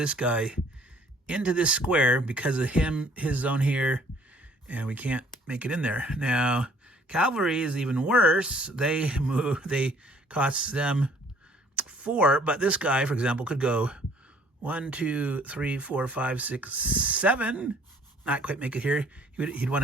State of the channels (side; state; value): both; normal; correlation 0.58